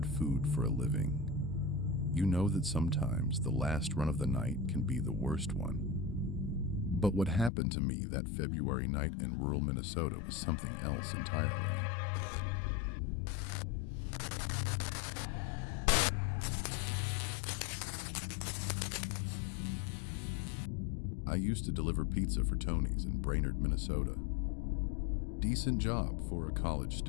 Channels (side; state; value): right; drops out; at 7.5 s